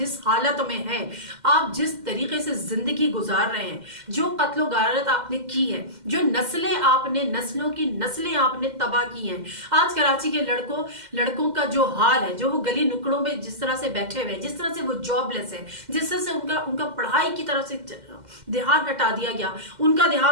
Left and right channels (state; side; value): late; left; 2.1 ms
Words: हालत में हैं, आप जिस तरीके से जिंदगी गुजार रहे हैं, जो कत्लो गारत आपने की है, जो नस्लों की नस्लें आपने तबाह की हैं, आज कराची के लड़कों का जो हाल है, जो वो गली नुकड़ों में जिस तरह से बैठे हुए हैं, जिस तरह से वो जॉबलेस है, जिस तरह से उनका पढ़ाई की तरफ से ध्यान हटा दिया गया, उनका